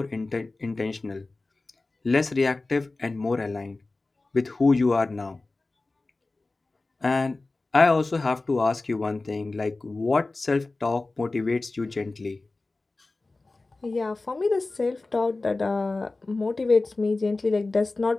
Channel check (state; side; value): quieter; right; 3.3 dB